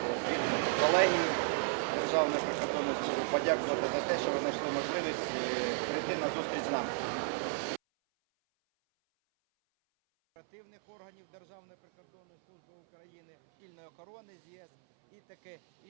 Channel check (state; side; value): silent; left; 55 dB below the other